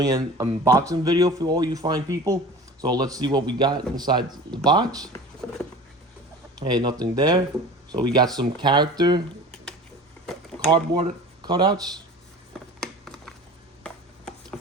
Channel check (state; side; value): normal; both; correlation 0.38